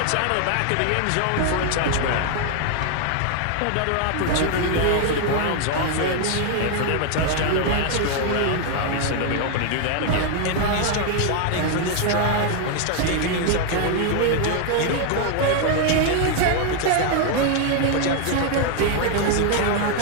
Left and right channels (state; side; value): different; both; correlation 0.00